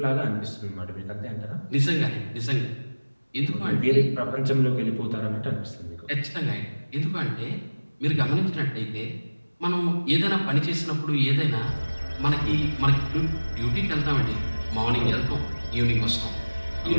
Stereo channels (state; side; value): inverted; both; correlation -1.00